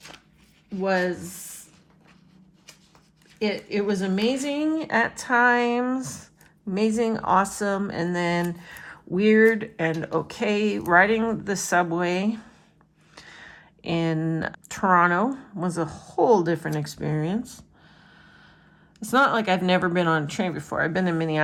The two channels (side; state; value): both; identical; correlation 1.00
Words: was, it was amazing at times, amazing, awesome, and then weird and okay. Riding the subway in Toronto was a whole different experience. It's not like I've never been on a train before. I've been in